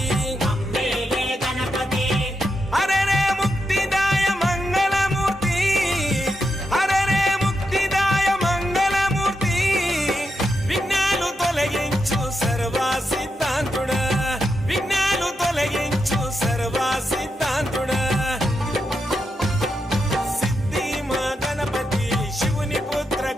హరే రే ముక్తిదాయ మంగళమూర్తి హరే రే ముక్తిదాయ మంగళమూర్తి విఘ్నాలు తొలగించు సర్వా సిద్ధాంతుడా విఘ్నాలు తొలగించు సర్వా సిద్ధాంతుడా సిద్ధి మా గణపతి శివుని పుత్ర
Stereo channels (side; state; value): both; normal; correlation 0.85